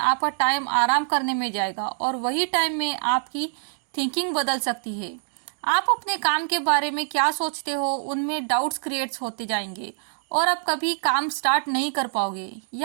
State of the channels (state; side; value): silent; left; digital silence